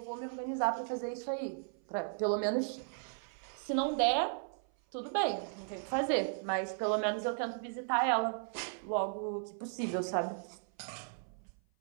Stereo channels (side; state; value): left; silent; 54 dB below the other